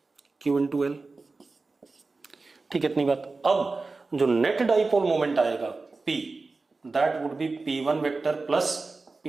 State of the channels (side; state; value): left; quieter; 3.8 dB